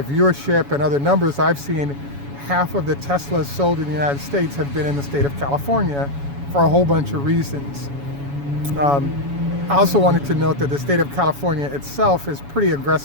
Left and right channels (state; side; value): late; left; 7.1 ms